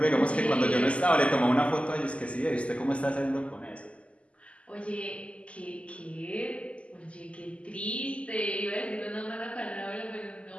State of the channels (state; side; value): late; right; 0.059 ms